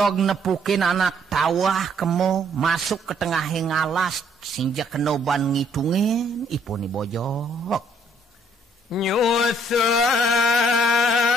nepukin anak tawah kemo masuk ke tengah ngalas sinjak kenoban ngitungin ipuni Bojog nyusap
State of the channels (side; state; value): both; normal; correlation 0.66